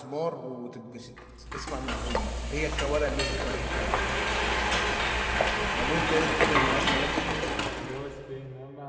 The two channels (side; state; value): both; identical; correlation 1.00